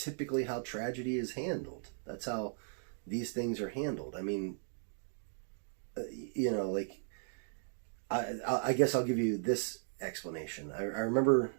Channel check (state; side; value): silent; left; digital silence